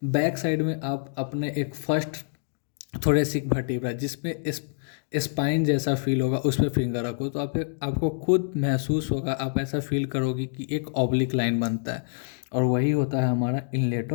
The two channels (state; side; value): silent; right; digital silence